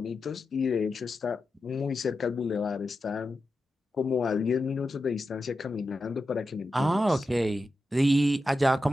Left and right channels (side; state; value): both; normal; correlation 0.90